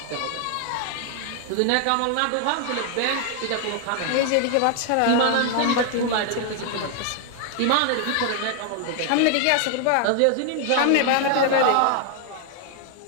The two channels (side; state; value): both; different; correlation 0.00